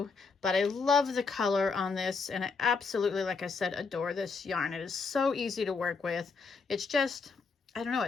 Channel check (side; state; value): right; quieter; 4.7 dB